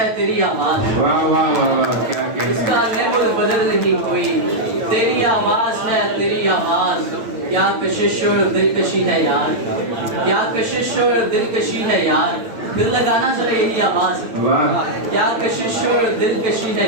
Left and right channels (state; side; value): late; left; 8.9 ms